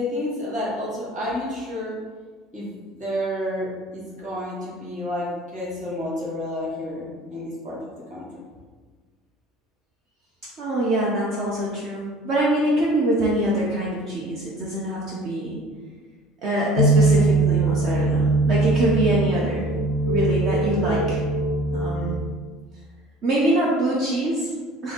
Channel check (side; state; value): both; normal; correlation 0.49